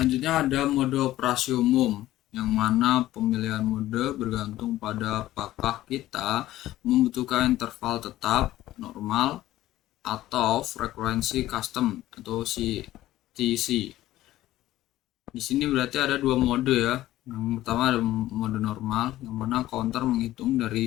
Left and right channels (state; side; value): quieter; right; 15.0 dB